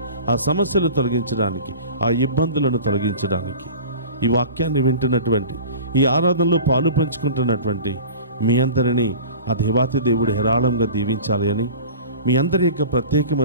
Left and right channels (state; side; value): inverted; both; correlation -0.38